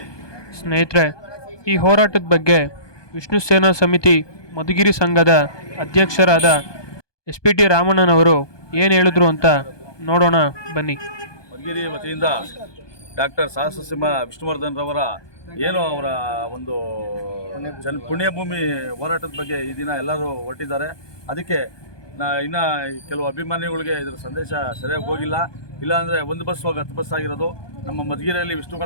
ಸ್ನೇಹಿತರೆ, ಈ ಹೋರಾಟದ ಬಗ್ಗೆ ವಿಷ್ಣು ಸೇನಾ ಸಮಿತಿ ಮಧುಗಿರಿ ಸಂಘದ ಅಧ್ಯಕ್ಷರಾದ SP T ರಾಮಣ್ಣನವರು ಏನು ಹೇಳಿದ್ರು ಅಂತ ನೋಡೋಣ ಬನ್ನಿ. ಮಧುಗಿರಿ ವತಿಯಿಂದ ಡಾಕ್ಟರ್ ಸಾಹಸಸಿಂಹ ವಿಷ್ಣುವರ್ಧನ್ ರವರ ಅವರ ಒಂದು ಪುಣ್ಯಭೂಮಿ ಹೋರಾಟದ ಬಗ್ಗೆ ಈ ದಿನ ಎಲ್ಲರೂ ಹೊರಟಿದ್ದಾರೆ. ಅದಕ್ಕೆ ಇನ್ನು ಕೆಲವು ಅಭಿಮಾನಿಗಳಿಗೆ ಇದರ ಸಂದೇಶ ಸರಿಯಾಗಿ ಹೋಗಿಲ್ಲ. ಇಲ್ಲಾಂದರೆ ಒಂದು ಬಸ್ ಹೋಗಿ 10 ಬಸ್ ಆಗಿರೋದು. ನಮ್ಮ ಮಧುಗಿರಿಯಲ್ಲಿ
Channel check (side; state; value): right; late; 1.2 ms